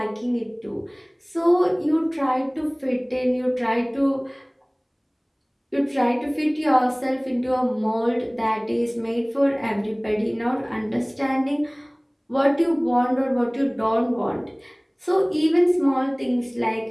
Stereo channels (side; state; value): both; identical; correlation 1.00